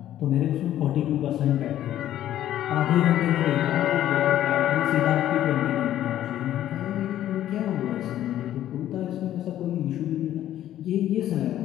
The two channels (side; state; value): right; quieter; 12.3 dB